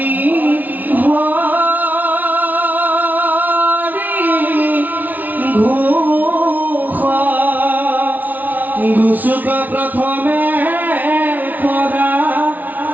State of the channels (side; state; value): left; late; 0.080 ms